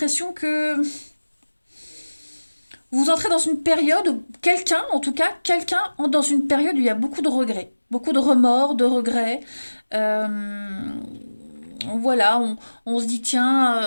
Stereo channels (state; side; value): inverted; both; correlation -1.00